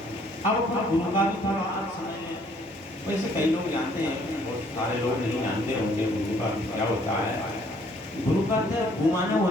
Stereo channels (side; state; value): both; normal; correlation 0.63